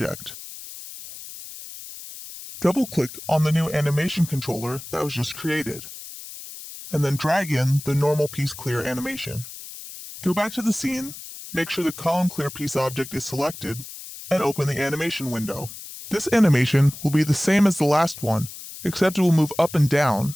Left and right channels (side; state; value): left; noise; hiss, 13 dB below the sound